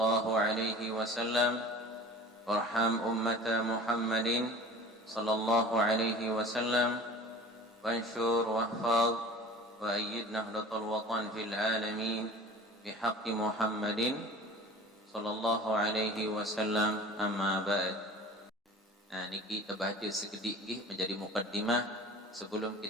عليه وسلم، وارحم أمة محمد صلى الله عليه وسلم، وانشر واحفظ وأيد نهضة الوطن في العالمين بحق محمد صلى الله عليه وسلم. أما بعد. Niki kita baca sekedik menjadi mukaddimah sebelum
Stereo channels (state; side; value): normal; both; correlation 0.42